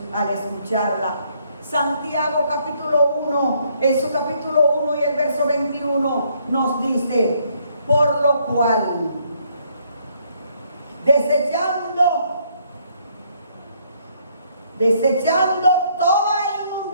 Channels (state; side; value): inverted; both; correlation -0.69